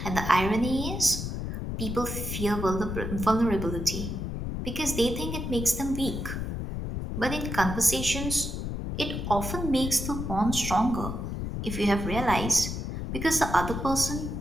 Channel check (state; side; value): noise; left; rumble, 4 dB below the sound